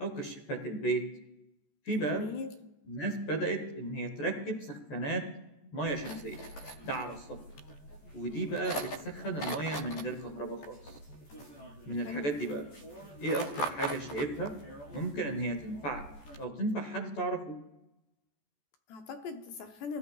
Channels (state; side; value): late; right; 14 ms